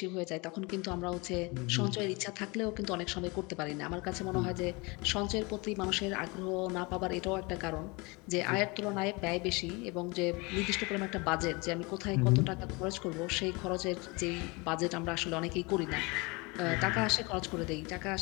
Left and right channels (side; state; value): right; quieter; 26.9 dB